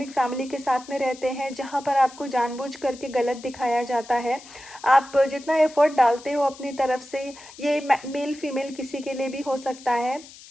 फैमिली के साथ में रहते हैं जहाँ पर आपको जानबूझ करके गलत दिखाया जाता है, आप जितना एफर्ट डालते हो अपनी तरफ से, ये मेल फीमेल किसी के लिए भी हो सकता है,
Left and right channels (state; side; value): noise; left; hiss, 19 dB below the sound